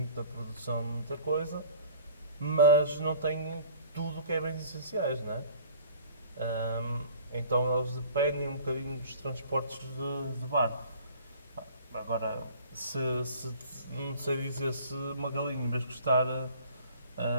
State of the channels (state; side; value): inverted; both; correlation -0.48